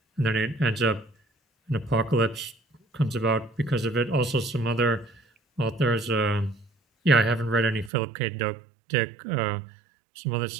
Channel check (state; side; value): drops out; left; at 7.9 s